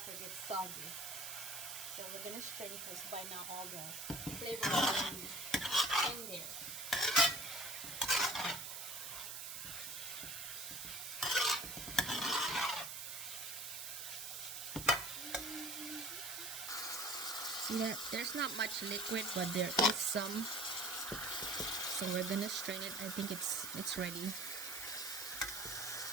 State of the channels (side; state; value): right; noise; hiss, 6 dB below the sound